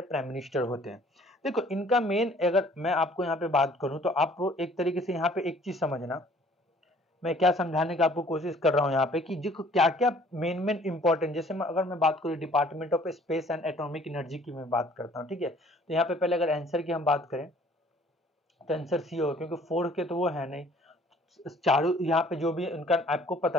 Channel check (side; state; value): both; normal; correlation 0.56